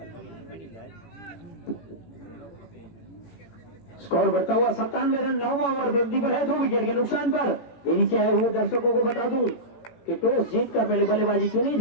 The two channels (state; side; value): late; right; 18 ms